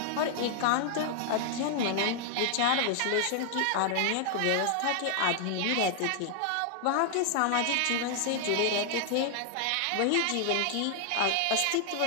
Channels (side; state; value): both; different; correlation 0.00